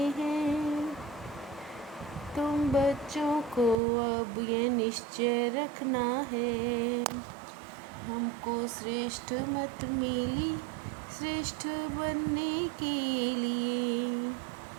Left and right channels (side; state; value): left; drops out; at 3.8 s